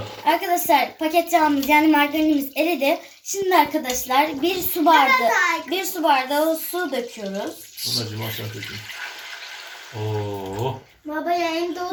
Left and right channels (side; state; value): both; identical; correlation 1.00